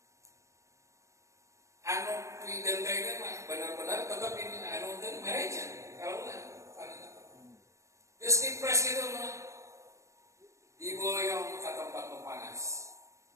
Anu pidentengna mah benar-benar tetap ini anu teh mereja kalau lah. Geus dipres gitu mah diboyong ke tempat nu panas.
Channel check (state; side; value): late; left; 0.15 ms